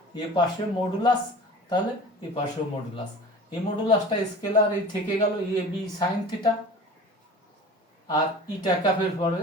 এ পাশে মডুলাস, তাহলে এ পাশেও মডুলাস। এই মডুলাসটা স্কেলার এই থেকে গেল এ বি সাইন থিটা, আর ইটা ক্যাপের পরে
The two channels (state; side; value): normal; both; correlation 0.39